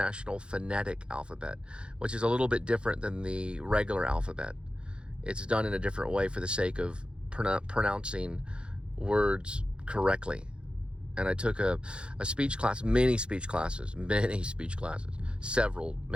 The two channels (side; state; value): left; late; 0.056 ms